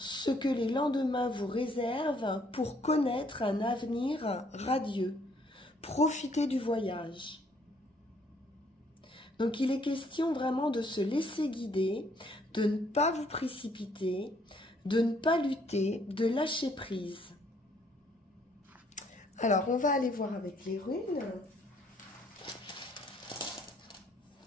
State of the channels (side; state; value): both; normal; correlation 0.65